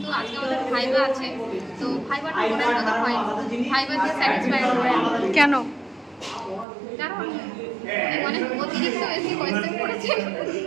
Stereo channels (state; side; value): drops out; left; at 6.7 s